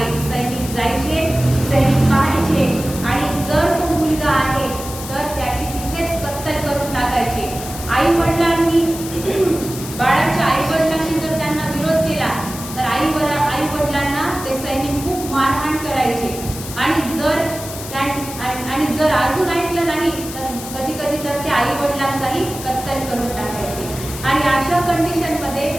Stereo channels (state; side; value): noise; left; hiss, 11 dB below the sound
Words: सैनिक जायचे, सैनिक पाहायचे आणि जर तो मुलगा आहे तर त्याची तिथेच कत्तल करून टाकायचे. आई वडिलांनी, बाळाच्या आई वडिलांनी जर त्यांना विरोध केला तर आई वडिलांना ते सैनिक खूप मारहाण करायचे. आणि जर अजून ऐकलं नाही तर कधी कधी तर ते आई वडिलांचाही कत्तल करून टाकायचे. आणि अशा कंडिशनमध्ये